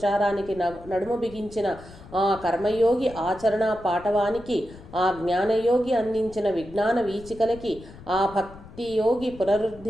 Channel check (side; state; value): left; noise; rumble, 18 dB below the sound